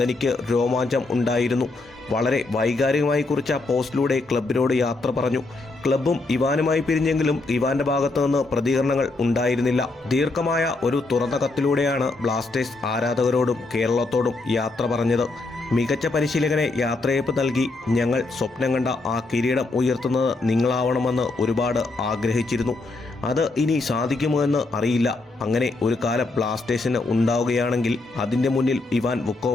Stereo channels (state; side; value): quieter; right; 3.3 dB